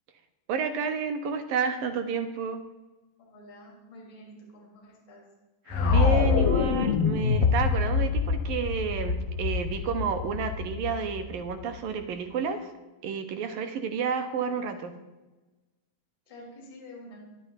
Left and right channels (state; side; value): late; left; 11 ms